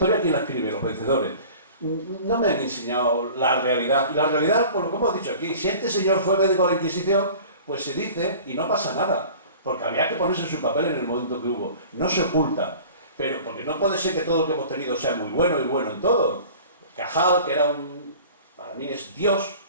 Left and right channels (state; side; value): inverted; both; correlation -0.43